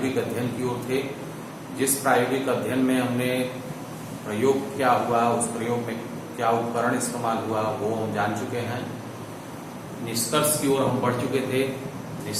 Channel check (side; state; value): both; identical; correlation 1.00